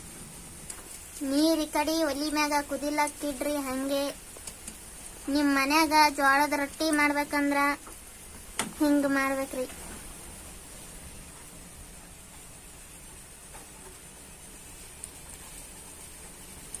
ನೀರ್ ಈ ಕಡೆ ಒಲಿ ಮ್ಯಾಗ ಕುದಿಲಾಕಿಡ್ರಿ. ಹಂಗೆ ನಿಮ್ ಮನ್ಯಾಗ ಜೋಳದ ರೊಟ್ಟಿ ಮಾಡ್ಬೇಕಂದ್ರ ಹಿಂಗ ಮಾಡ್ಬೇಕ್ರಿ.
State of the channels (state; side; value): identical; both; correlation 1.00